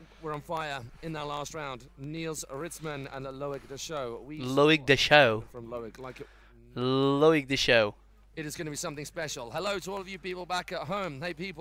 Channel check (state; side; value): identical; both; correlation 1.00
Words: Loic Deschaux. Loic Deschaux. It is going to be something special. Hello to all of you people back at home. Hey